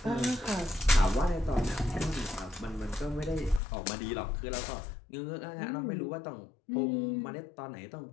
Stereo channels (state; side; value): drops out; right; at 3.6 s